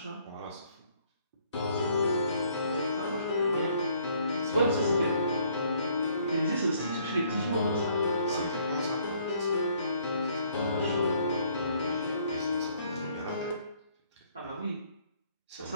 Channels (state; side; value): inverted; both; correlation -0.64